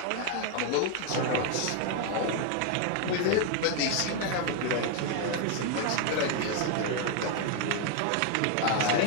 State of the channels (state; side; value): different; both; correlation 0.01